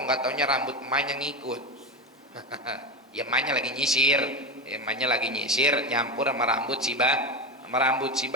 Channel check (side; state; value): both; normal; correlation 0.18